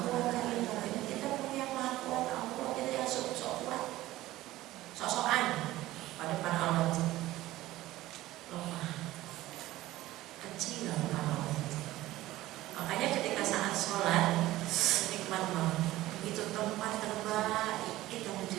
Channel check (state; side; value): quieter; left; 16.4 dB